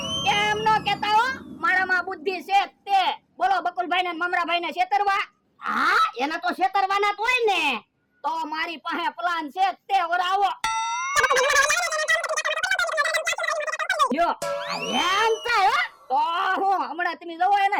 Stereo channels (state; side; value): identical; both; correlation 1.00